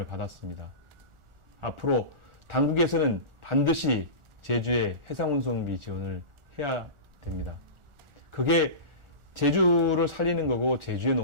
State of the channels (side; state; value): left; late; 1.4 ms